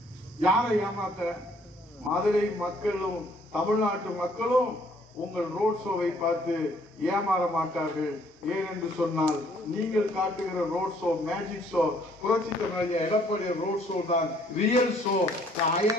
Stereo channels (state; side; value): normal; both; correlation 0.63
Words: யாரை ஏமாத்த? மதுரை மக்களும் தமிழ்நாட்டு மக்களும் உங்கள் ரோட் ஷோவை பார்த்து ஏமாற மாட்டார்கள். ஏனென்று சொன்னால் நீங்கள் காட்டுகிற ரோட் ஷோ மேஜிக் ஷோ, புரட்சி தமிழ் எடப்பாடி ரோட் ஷோ தான் real show.